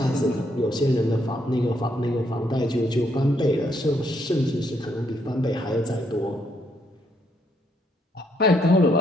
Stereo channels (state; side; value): normal; both; correlation 0.73